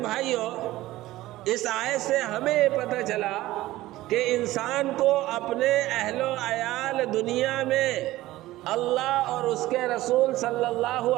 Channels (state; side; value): quieter; left; 16.7 dB